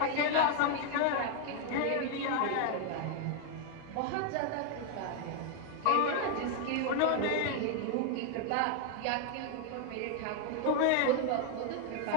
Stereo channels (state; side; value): different; both; correlation 0.00